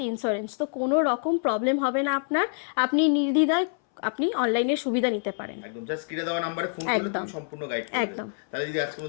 ইন্স্যুরেন্স, তো কোনো রকম প্রবলেম হবে না আপনার, আপনি নির্দ্বিধায় আপনি অনলাইনের সুবিধা নিতে পারেন। একদম জাস্ট স্ক্রিনে দেওয়া নম্বরে ফোন করলে তুমি সম্পূর্ণ গাইড করবে। একদম। তাহলে যদি আজকের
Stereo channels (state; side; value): silent; right; 60 dB below the other